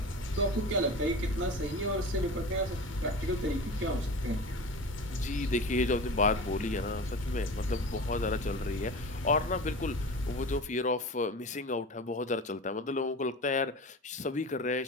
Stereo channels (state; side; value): normal; both; correlation 0.32